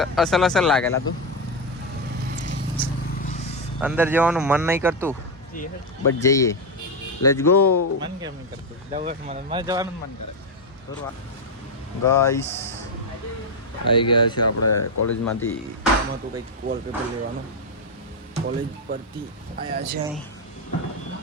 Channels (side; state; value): both; normal; correlation 0.06